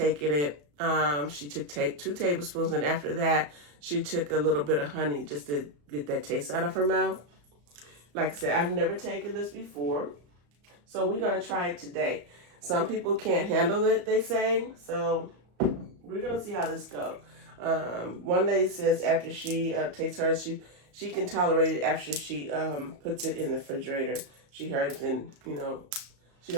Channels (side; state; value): left; late; 34 ms